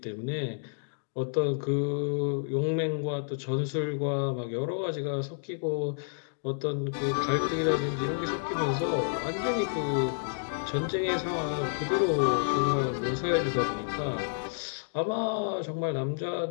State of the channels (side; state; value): right; silent; digital silence